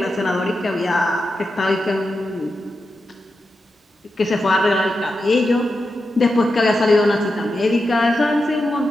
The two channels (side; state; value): both; normal; correlation 0.89